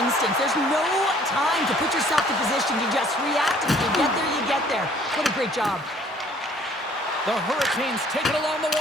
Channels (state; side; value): normal; both; correlation 0.58